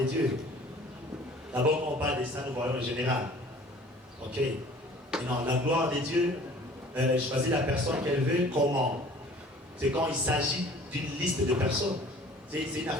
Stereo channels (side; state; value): both; normal; correlation 0.49